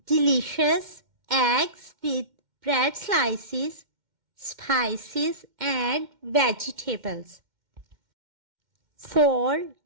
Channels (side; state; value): left; late; 2.1 ms